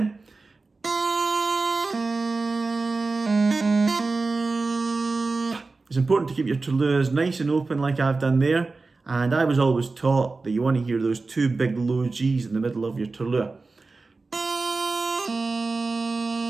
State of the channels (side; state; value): left; quieter; 3.7 dB